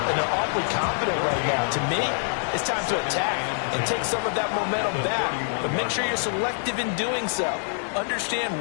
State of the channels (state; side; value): silent; right; 61 dB below the other